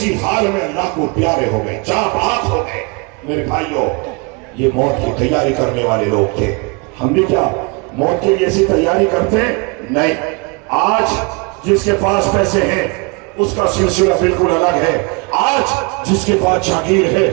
حال میں اللہ کو پیارے ہو گئے، جاں بحق ہو گئے۔ میرے بھائیوں، یہ موت کی تیاری کرنے والے لوگ تھے۔ ہم بھی کیا موت کے لیے ایسی تیاری کرتے ہیں؟ نہیں۔ آج جس کے پاس پیسے ہیں اس کا سلسلہ بالکل الگ ہے، آج جس کے پاس جاگیر ہے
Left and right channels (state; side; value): quieter; left; 30.2 dB